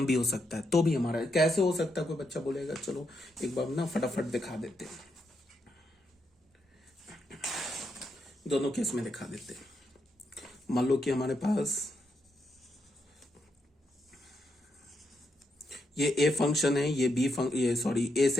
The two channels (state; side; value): normal; both; correlation 0.81